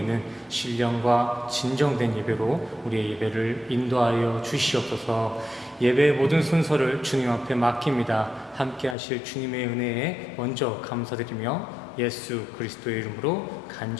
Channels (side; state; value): right; drops out; at 9.0 s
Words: 신령과 진정된 예배로 우리의 예배를 인도하여 주시옵소서. 예배의 모든 순서를 주님 앞에 맡깁니다. 함께 하실 주님의 은혜에 먼저 감사드리며 예수 그리스도의 이름으로